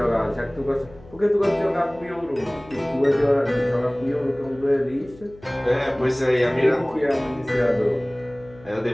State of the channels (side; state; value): left; noise; hum, 22 dB below the sound